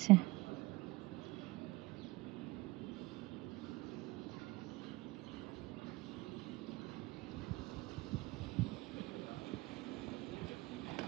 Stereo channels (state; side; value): quieter; left; 21.3 dB